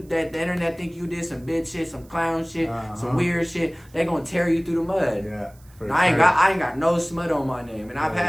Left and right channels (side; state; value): right; noise; hiss, 29 dB below the sound